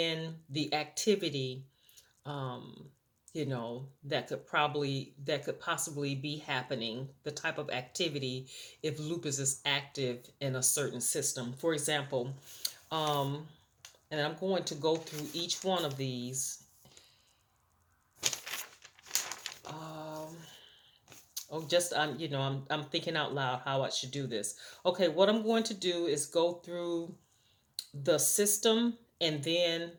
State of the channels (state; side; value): identical; both; correlation 1.00